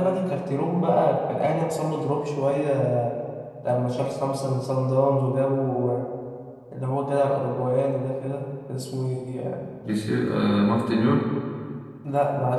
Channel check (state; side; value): identical; both; correlation 1.00